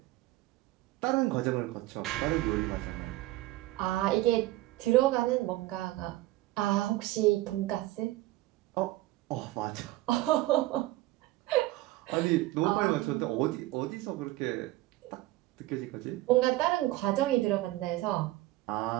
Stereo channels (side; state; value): left; quieter; 17.7 dB